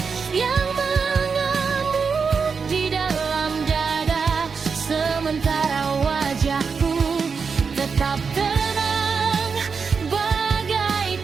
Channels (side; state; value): left; quieter; 5.5 dB